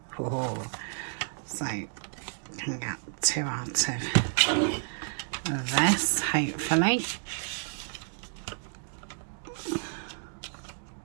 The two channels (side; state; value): left; silent; digital silence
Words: Oh, so can get 2 out of this, hopefully.